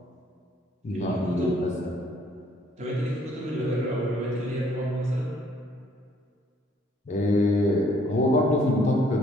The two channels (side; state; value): both; normal; correlation 0.63